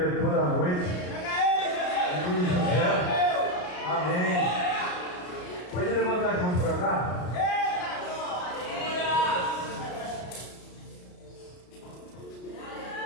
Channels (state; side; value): late; right; 33 ms